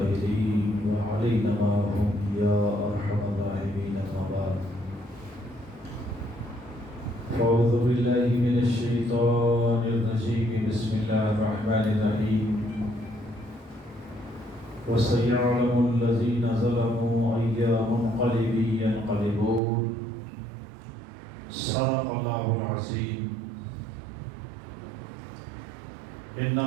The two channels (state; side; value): drops out; left; at 19.6 s